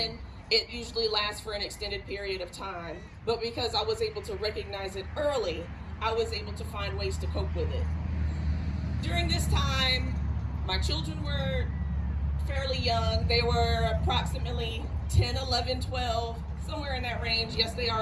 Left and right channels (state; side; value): identical; both; correlation 1.00